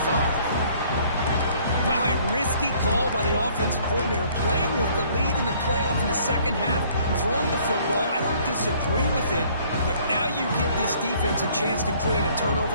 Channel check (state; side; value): inverted; both; correlation -0.59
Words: 45. Wow, a risky call by the offensive coordinator, playing with the lead in the playoff in the second half, throwing the football. I don't disagree with it, but now you give this defense a chance to create a